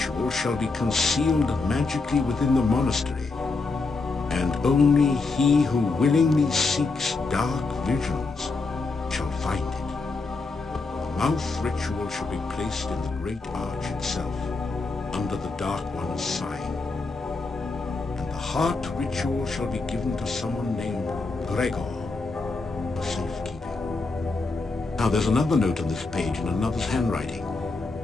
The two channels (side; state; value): right; quieter; 3.8 dB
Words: shall be concealed magically within the monastery, and only he who willingly seeks dark visions shall find it. The mouth ritual shall be placed in the great arch itself, under the Dark One's sign. And the heart ritual shall be given to someone named Gregor for safekeeping. Now there's another note on this page in another's handwriting.